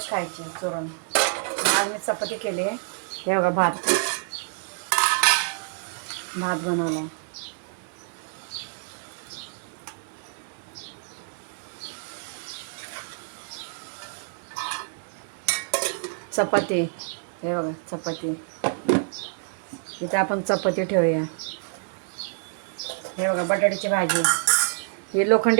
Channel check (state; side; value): silent; left; 60 dB below the other